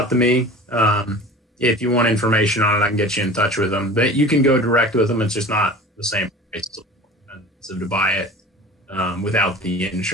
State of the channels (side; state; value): both; normal; correlation 0.39